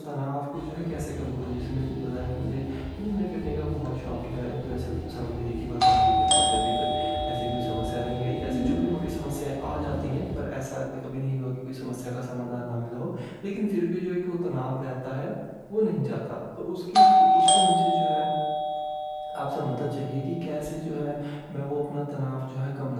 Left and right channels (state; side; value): identical; both; correlation 1.00